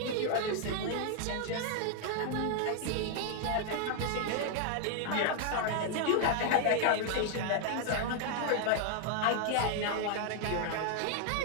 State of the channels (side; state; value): both; different; correlation 0.00